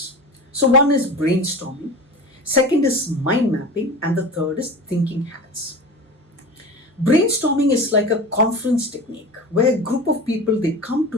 So one is brainstorming, second is mind mapping, and the third is thinking hats. Brainstorming is like a conference technique where a group of people, they come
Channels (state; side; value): normal; both; correlation 0.32